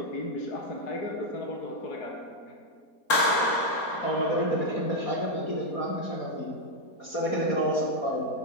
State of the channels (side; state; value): right; late; 4.3 ms